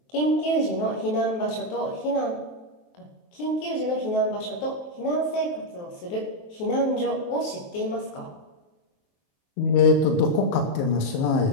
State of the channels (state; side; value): late; right; 23 ms